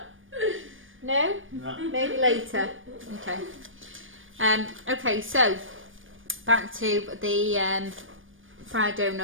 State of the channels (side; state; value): left; late; 0.58 ms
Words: No? No. Maybe later. Okay. Okay, so back to the fried